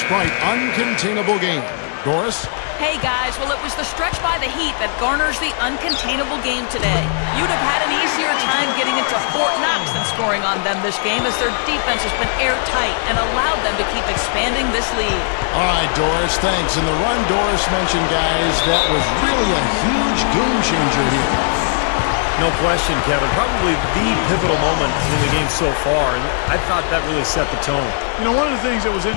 uncontainable game. Doris? Hey guys, well it was the stretch by the Heat that garners the uncontainable game today. You'd have had an easier time getting into Fort Knox than scoring on them this game, as their defense has been airtight and allowed them to keep expanding this lead. All right, Doris, thanks. And the run Doris mentioned, guys, that was really a huge game changer here. No question, Kevin. Probably the pivotal moment in the game so far, and I thought that really set the tone. You know, one of the things that was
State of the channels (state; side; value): silent; right; digital silence